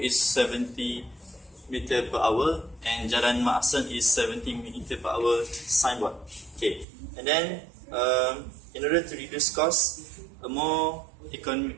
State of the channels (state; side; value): drops out; left; at 6.9 s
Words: is 70 meter per hour, and Jalan Mak Hassan is 70 meter per hour signboard. Okay, and then in order to reduce costs, a more